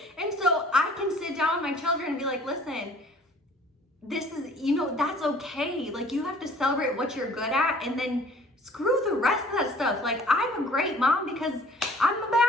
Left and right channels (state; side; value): normal; both; correlation 0.53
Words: And so I can sit down with my children and be like, listen, this is, you know, that's okay. Like, you have to celebrate what you're good at, and then screw the rest of that stuff. Like, I'm a great mom because I'm a